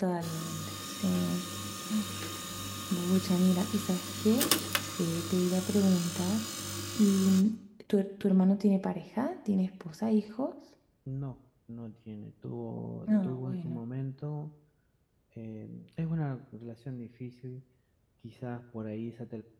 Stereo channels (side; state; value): both; identical; correlation 1.00